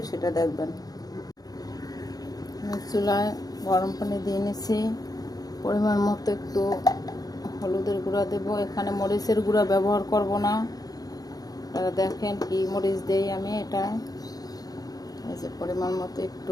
সেটা দেখবেন। চুলায় গরম পানি দিয়ে নিছি। পরিমাণ মতো একটু হলুদের গুঁড়া দেব। এখানে মরিচের গুঁড়া ব্যবহার করব না। আপনারা দেখেন কি মরিচ দেই আমি এটা। এই যে পরিমাণ মতো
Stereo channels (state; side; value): late; right; 0.18 ms